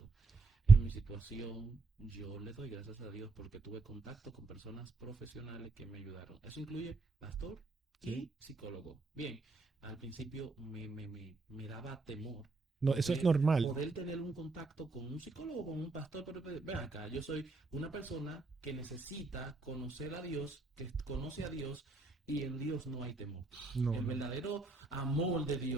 En mi situación, yo le doy gracias a Dios porque tuve contacto con personas profesionales que me ayudaron. Eso incluye pastor Sí. y psicólogo. Bien, al principio me daba temor No, eso es normal. poder tener un contacto con un psicólogo, con un pastor, pero ven acá, yo soy una persona que necesita conocer a Dios, que conoce a Dios y en Dios no hay temor. No, El verdadero amor de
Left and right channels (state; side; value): quieter; left; 3.7 dB